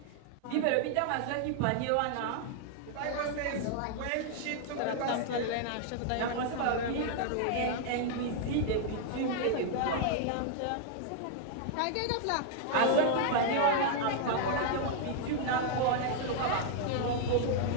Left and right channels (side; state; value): both; different; correlation -0.01